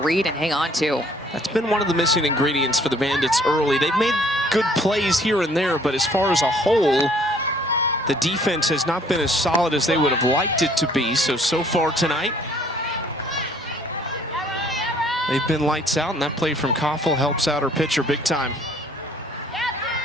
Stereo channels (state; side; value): normal; both; correlation 0.59